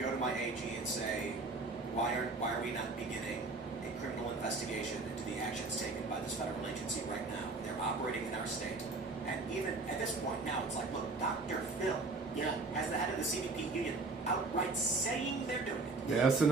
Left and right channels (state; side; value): quieter; left; 3.6 dB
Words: to my AG and say, why are we not beginning a criminal investigation into the actions taken by this federal agency right now? They're operating in our state. And even at this point now, it's like, look, Dr. Phil, as the head of the CBP union, outright saying they're doing it. The